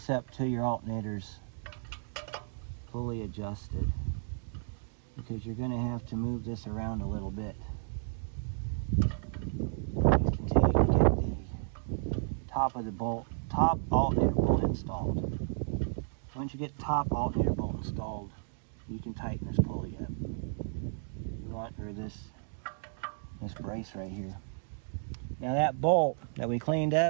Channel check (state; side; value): silent; left; digital silence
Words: up till your alternator's fully adjusted, because you're going to have to move this around a little bit until you can get the top alternator bolt installed. Once you get the top alternator bolt installed, you can tighten this pulley up. You want, or this brace right here. Now that bolt that we cleaned